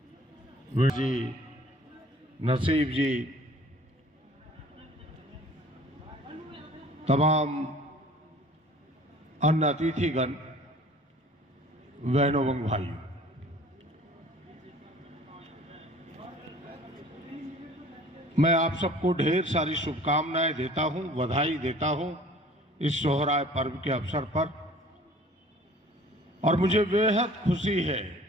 वीर जी, नसीब जी, तमाम अन्य अतिथिगण, बहनों एवं भाइयों, मैं आप सबको ढेर सारी शुभकामनाएं देता हूं, बधाई देता हूं इस सोहराय पर्व के अवसर पर। और मुझे बेहद खुशी है,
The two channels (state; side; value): normal; both; correlation 0.50